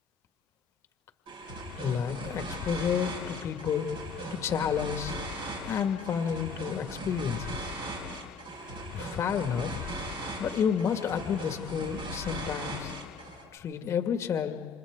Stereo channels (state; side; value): quieter; right; 5.7 dB